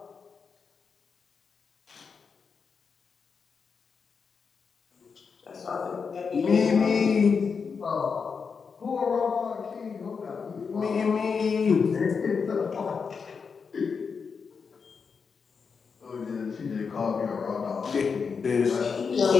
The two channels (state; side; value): quieter; right; 5.6 dB